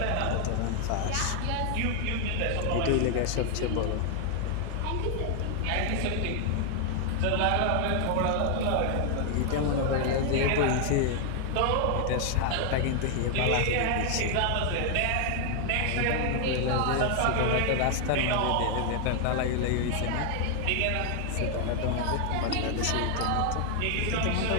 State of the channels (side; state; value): both; different; correlation 0.00